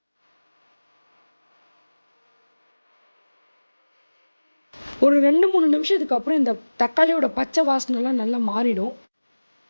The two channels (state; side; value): inverted; both; correlation -1.00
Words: ஒரு 2-3 நிமிஷத்துக்கு அப்புறம் இந்த தக்காளியோட பச்சை வாசனைலாம் நல்லா மாறிடும்.